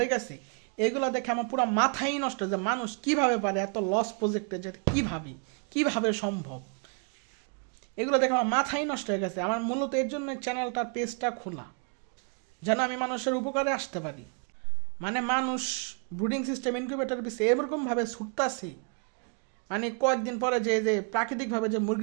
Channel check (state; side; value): quieter; left; 37.7 dB